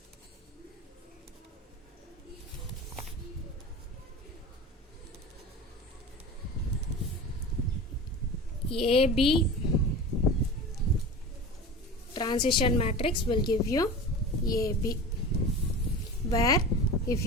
AB transition matrix will give you AB, where if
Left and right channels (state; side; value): normal; both; correlation 0.33